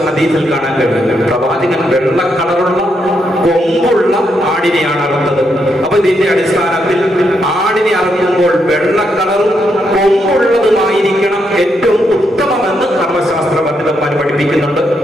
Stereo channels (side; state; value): both; normal; correlation 0.79